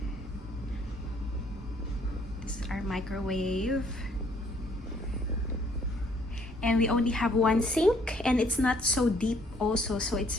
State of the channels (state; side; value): normal; both; correlation 0.64